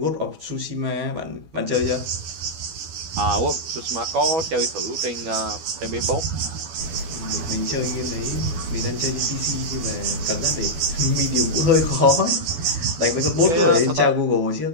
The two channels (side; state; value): left; late; 12 ms